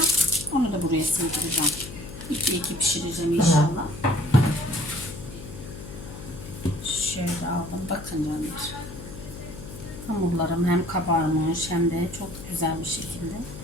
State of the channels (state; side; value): noise; left; hum, 12 dB below the sound